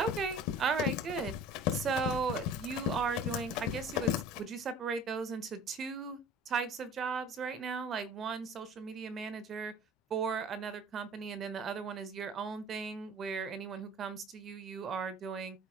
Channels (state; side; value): normal; both; correlation 0.45